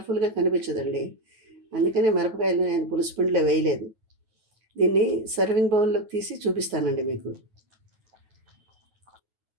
కనిపించదండి. అందుకనే మిరపకాయలు నేను పులుసు పిండిలో వేయలేదు. దీన్ని సర్వింగ్ బౌల్‌లోకి తీసి చూపిస్తానండి మీకు.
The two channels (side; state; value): left; late; 9.2 ms